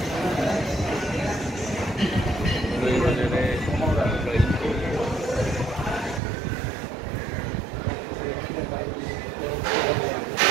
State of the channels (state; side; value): drops out; left; at 6.2 s